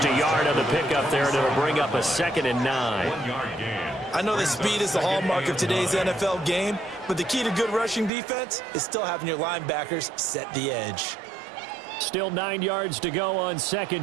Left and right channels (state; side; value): drops out; left; at 8.1 s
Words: a yard on the pickup there, and it'll bring up a 2nd and 9. I know that speed is the hallmark of today's NFL game, but the key to good rushing defense is still having your linebackers set the edge. Still 9 yards to go on